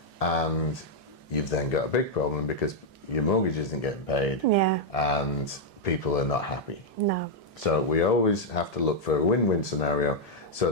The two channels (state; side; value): normal; both; correlation -0.02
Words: and you've then got a big problem because your mortgage isn't getting paid, and people are not happy. No. So we always have to look for a win-win scenario so